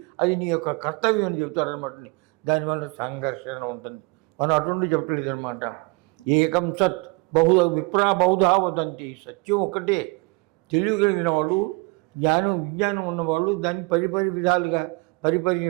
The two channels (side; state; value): left; quieter; 27.3 dB